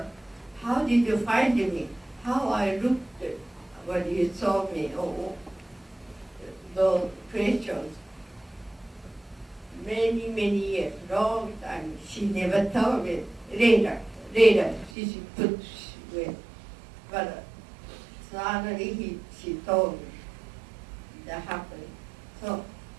how did you find me? How I looked when you saw me? Oh, those questions. Many, many years, long time, she never told me. Later, she put with. But suddenly she told me that happened. So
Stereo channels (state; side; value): drops out; left; at 14.9 s